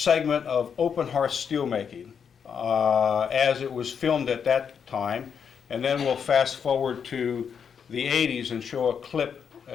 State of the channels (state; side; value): quieter; right; 7.0 dB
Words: of open hearth steelmaking as it was filmed at that time. And then we'll fast forward to the 80s and show a clip